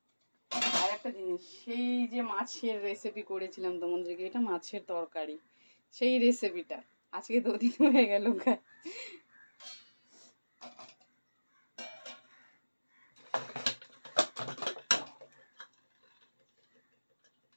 আর একটা জিনিস, সেই যে মাছের রেসিপি করেছিলাম তোমাদেরকে, এটা মাছের তরকারি, সেই রেসিপিটা আজকে 2 দিন হয়ে গেল।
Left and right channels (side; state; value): both; inverted; correlation -1.00